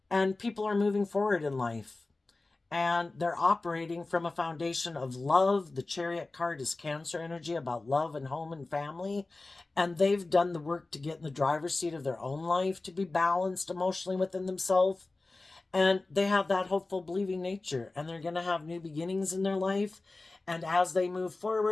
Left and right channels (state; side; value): quieter; right; 3.3 dB